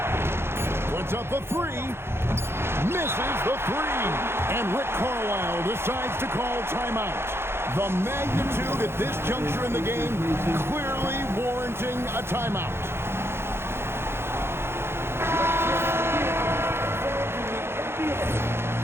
Puts up a three. Misses the three. And Rick Carlisle decides to call timeout. The magnitude at this juncture in the game clearly warranting a timeout.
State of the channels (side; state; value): left; late; 0.12 ms